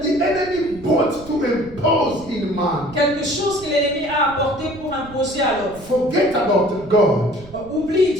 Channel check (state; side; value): noise; right; rumble, 18 dB below the sound